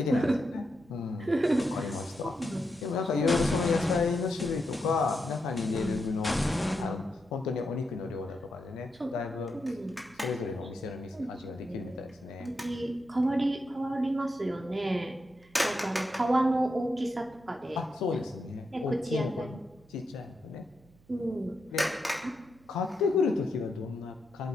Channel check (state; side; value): noise; right; hum, 28 dB below the sound